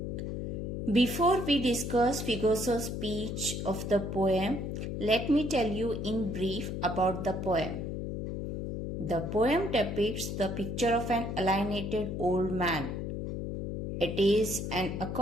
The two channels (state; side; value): noise; left; hum, 4 dB below the sound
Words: Before we discuss figures of speech of the poem, let me tell you in brief about the poem. The poem depicts the picture of an alienated old man. It is an